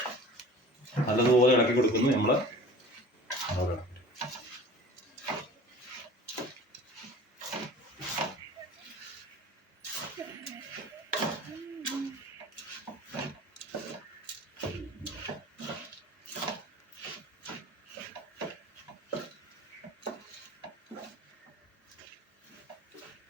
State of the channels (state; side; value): normal; both; correlation 0.42